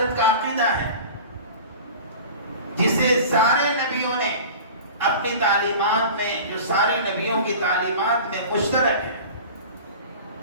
کا عقیدہ ہے جسے سارے نبیوں نے اپنی تعلیمات میں، جو سارے نبیوں کی تعلیمات میں مشترک ہے.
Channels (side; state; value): both; inverted; correlation -0.38